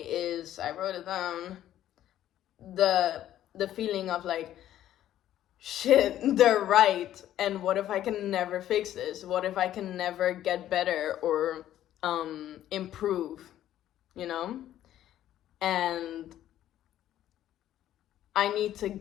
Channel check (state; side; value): quieter; right; 12.2 dB